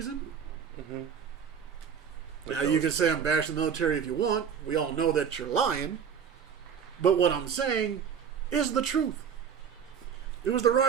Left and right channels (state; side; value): quieter; left; 7.3 dB